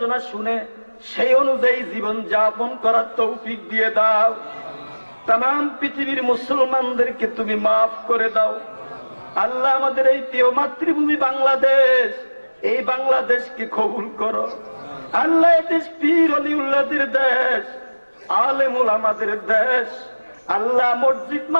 শুনে সেই অনুযায়ী জীবন যাপন করার তৌফিক দিয়ে দাও। তাম পৃথিবীর মুসলমানদেরকে তুমি মাফ করে দাও আল্লাহ। আমাদের এই প্রিয় মাতৃভূমি বাংলাদেশ, এই বাংলাদেশকে কবুল করো আল্লাহ। এই দেশ পীর ওলিউল্লাহদের দেশ, আলেম ওলামাদের দেশ আল্লাহ, মসজিদ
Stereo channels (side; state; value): both; inverted; correlation -1.00